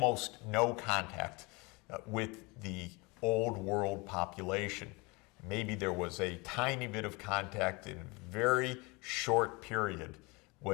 no contact with the Old World population. Maybe there was a tiny bit of contact in a very short period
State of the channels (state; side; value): quieter; right; 26.7 dB